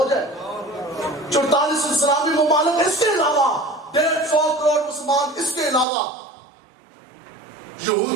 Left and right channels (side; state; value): left; drops out; at 5.9 s